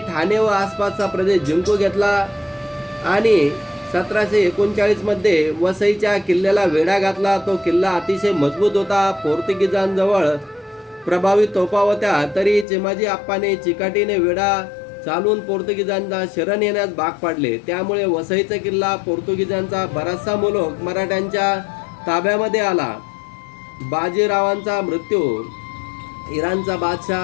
व आसपासचा प्रदेश जिंकून घेतला आणि 1739 मध्ये वसईच्या किल्ल्याला वेढा घातला. तो किल्ला अतिशय मजबूत होता. पोर्तुगीजांजवळ प्रभावी तोफा होत्या. तरी चिमाजी आप्पाने चिकाटीने वेढा चालून पोर्तुगीजांना शरण येण्यास भाग पाडले. त्यामुळे वसईचा किल्ला पोर्तुगीजांचा बराचसा मुलूक मराठ्यांच्या ताब्यामध्ये आला. बाजीरावांचा मृत्यू. इराणचा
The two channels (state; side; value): drops out; right; at 12.7 s